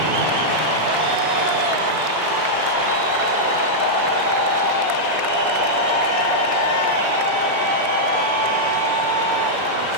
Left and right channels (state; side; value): late; left; 2.0 ms